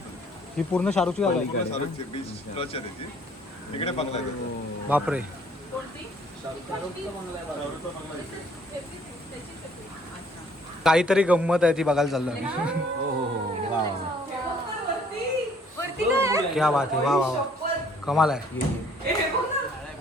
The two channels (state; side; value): normal; both; correlation 0.60